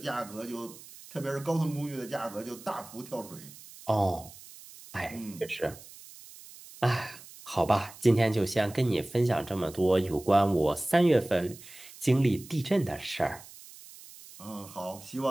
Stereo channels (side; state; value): right; noise; hiss, 18 dB below the sound